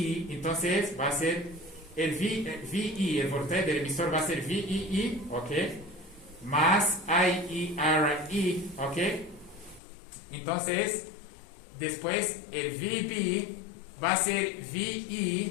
entonces va a ser el VE, el voltaje del emisor va a ser VEE, ¿ok? Más IERE, ¿ok? Entonces, después el VB va a ser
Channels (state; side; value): drops out; right; at 9.8 s